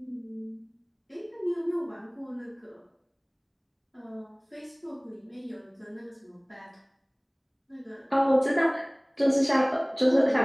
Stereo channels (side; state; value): both; identical; correlation 1.00